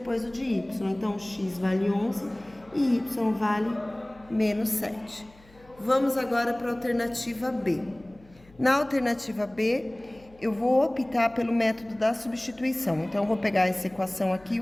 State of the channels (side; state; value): left; noise; hum, 26 dB below the sound